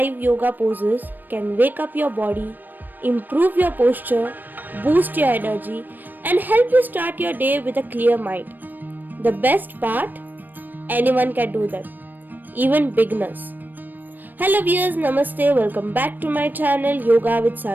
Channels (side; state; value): left; late; 0.090 ms